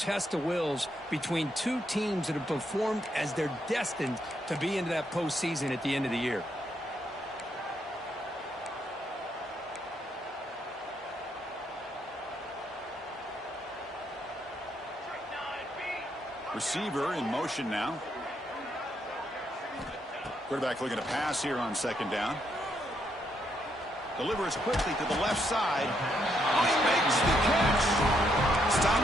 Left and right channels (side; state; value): both; normal; correlation 0.76